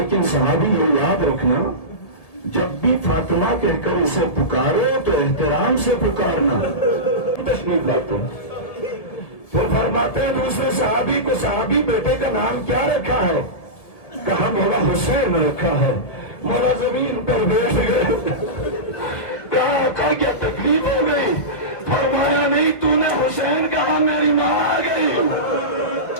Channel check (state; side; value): late; right; 1.6 ms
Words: صحابی یہ یاد رکھنا، جب بھی فاطمہ کہہ کر اسے پکارو تو احترام سے پکارنا۔ تشریف لاتے ہیں، پھر فرماتے ہیں دوسرے صحابی کو صحابی بیٹے کا نام کیا رکھا ہے؟ کہا مولا حسین رکھا ہے۔ مولا زمین پر بیٹھ گئے۔ کہا آقا کیا تکلیف ہو گئی؟ فرمایا نہیں، تو نے حسین کہا میری ماں آ گئی۔